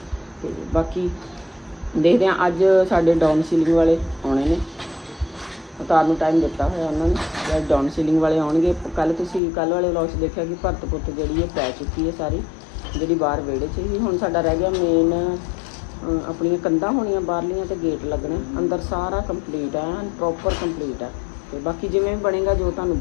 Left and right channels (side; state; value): right; drops out; at 9.4 s